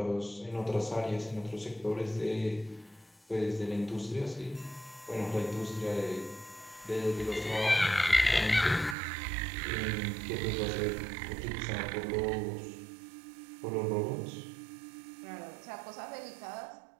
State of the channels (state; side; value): drops out; left; at 9.0 s